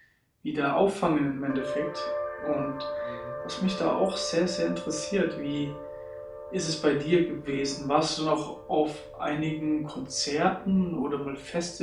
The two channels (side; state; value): both; identical; correlation 1.00